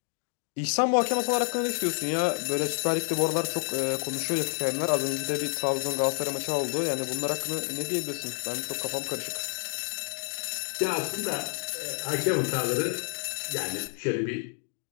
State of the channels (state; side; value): silent; right; 59 dB below the other